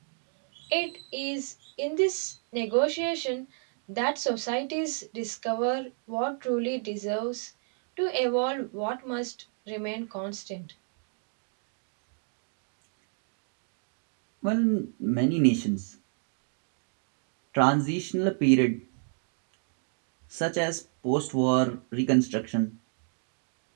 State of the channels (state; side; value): silent; left; 55 dB below the other